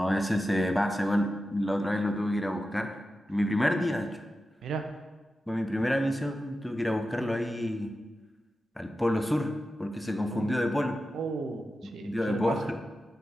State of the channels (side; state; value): both; normal; correlation 0.91